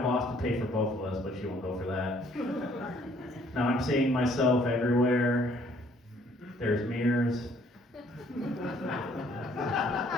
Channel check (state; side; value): normal; both; correlation 0.62